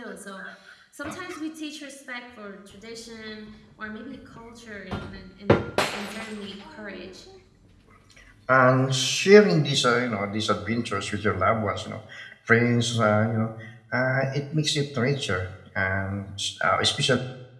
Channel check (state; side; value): identical; both; correlation 1.00